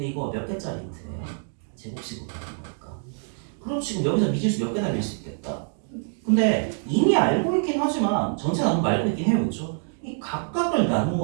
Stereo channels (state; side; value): silent; left; 58 dB below the other